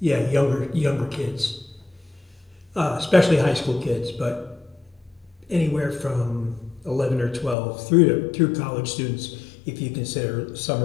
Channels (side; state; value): right; drops out; at 7.6 s